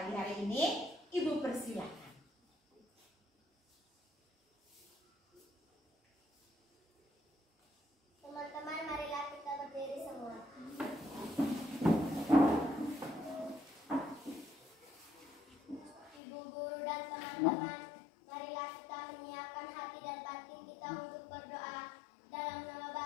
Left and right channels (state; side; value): drops out; right; at 16.2 s